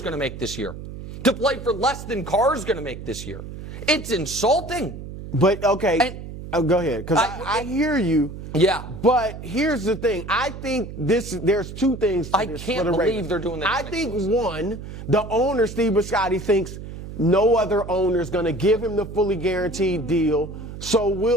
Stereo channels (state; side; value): noise; right; hum, 11 dB below the sound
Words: going to make this year. To play for less than Carr's going to make this year. It's insulting. But, okay, And- go ahead, because I hear you. Yeah. But here's the thing. I think there's two things to I this can't for the believe Ravens. they're doing that I think, non-exclusive. one, the owner, Steve Bisciotti, thinks no other owner is going to give him the fully guaranteed deal.